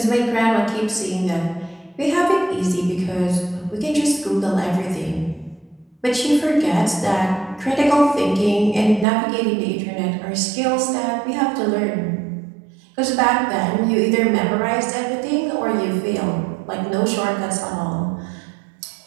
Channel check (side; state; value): left; drops out; at 9.1 s